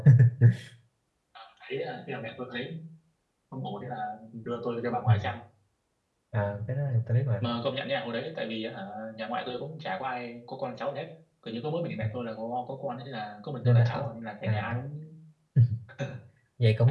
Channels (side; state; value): both; identical; correlation 1.00